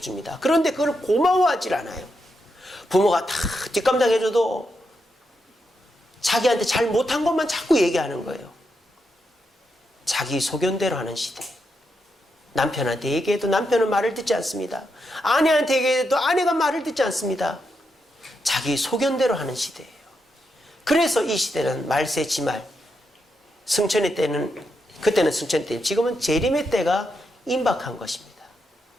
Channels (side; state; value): both; normal; correlation 0.83